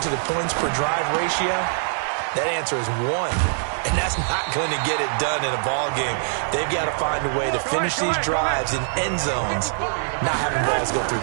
the points per drive ratio, that answer is 1. And that's not going to get it done in a ball game. They've got to find a way to finish these drives in end zones, not having balls go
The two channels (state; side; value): silent; left; digital silence